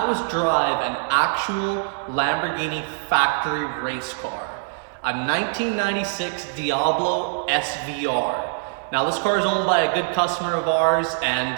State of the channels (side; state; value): left; silent; 58 dB below the other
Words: was drive an actual Lamborghini factory race car, a 1996 Diablo Svr. Now this car is owned by a good customer of ours,